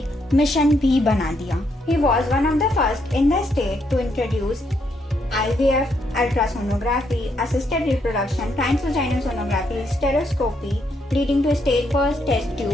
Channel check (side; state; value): both; normal; correlation 0.75